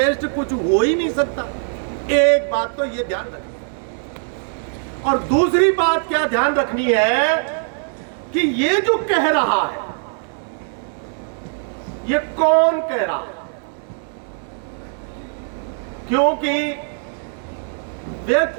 कुछ हो ही नहीं सकता। एक बात तो ये ध्यान रखनी, और दूसरी बात क्या ध्यान रखनी है कि ये जो कह रहा है ये कौन कह रहा है, क्योंकि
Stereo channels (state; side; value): silent; left; digital silence